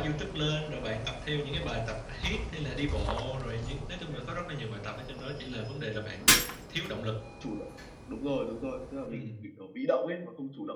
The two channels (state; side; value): identical; both; correlation 1.00